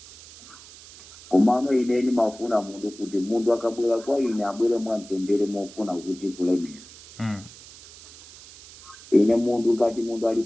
komano ine ni mafuna mundu kuti mundu akabwera kwa ine abwere mwamtendere mofuna kuti kulemera. Ine mundu ngati mundu ali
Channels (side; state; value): right; noise; hiss, 19 dB below the sound